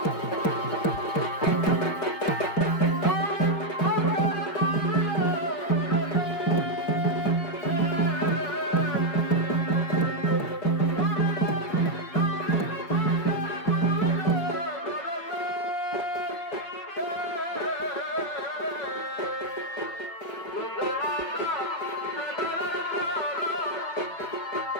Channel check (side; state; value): right; late; 4.9 ms